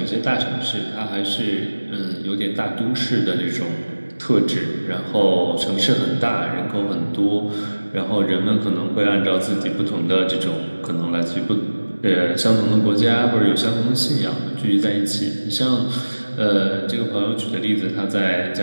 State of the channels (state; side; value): inverted; both; correlation -1.00